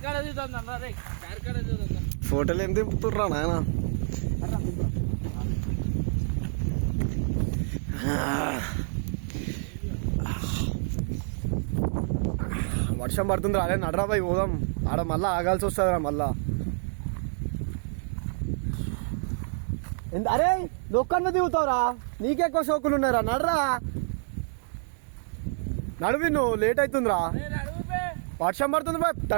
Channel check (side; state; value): left; silent; 59 dB below the other